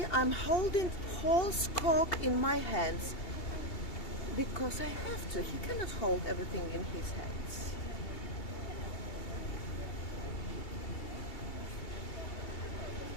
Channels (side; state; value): right; late; 2.7 ms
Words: I'm holding Paul's cock in my hands because I have to. He cannot hold everything in his hands.